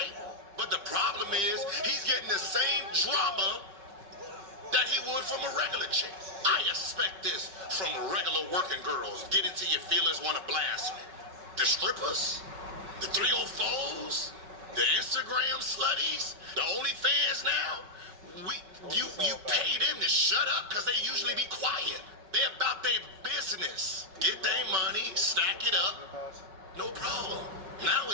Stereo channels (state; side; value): late; left; 5.4 ms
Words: but the problem is he's getting the same drama that he would from a regular chick. I expect this from regular working girls. Get into your feelings, want to blast you. The strippers, the 304s, the Instagram slutties, the OnlyFans now. You pay them to shut up because they usually be quiet. They're about their business. Get their money, stack it up, no problem. Now